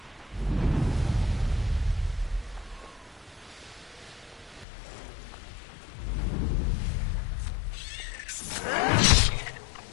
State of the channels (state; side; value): drops out; right; at 4.7 s